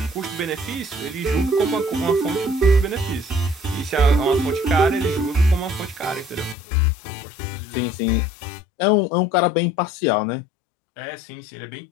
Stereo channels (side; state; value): right; drops out; at 6.6 s